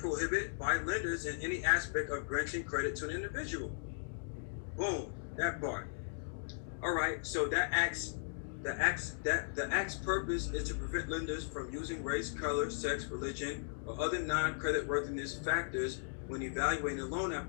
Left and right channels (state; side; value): silent; right; digital silence